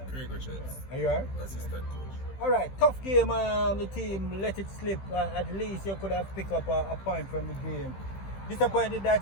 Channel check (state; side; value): late; right; 15 ms